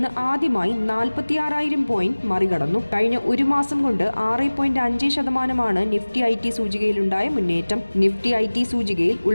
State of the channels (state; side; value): inverted; both; correlation -1.00